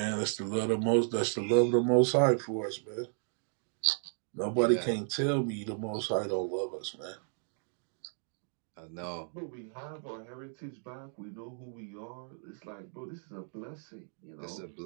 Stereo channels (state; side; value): silent; left; 55 dB below the other